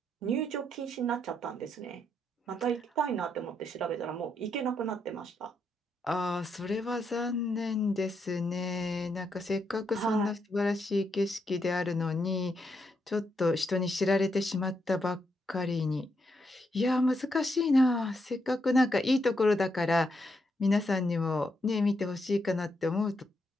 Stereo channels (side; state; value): both; normal; correlation 0.80